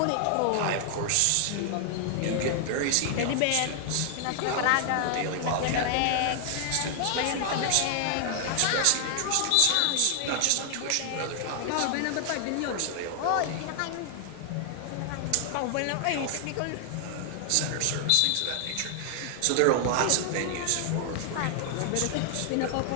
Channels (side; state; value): both; different; correlation 0.00